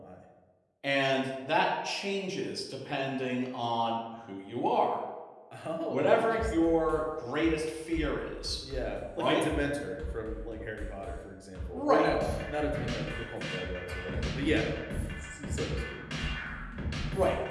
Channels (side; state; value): both; identical; correlation 1.00